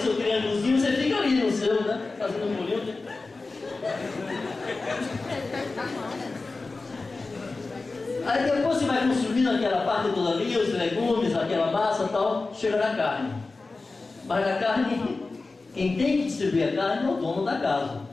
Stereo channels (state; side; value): quieter; right; 3.6 dB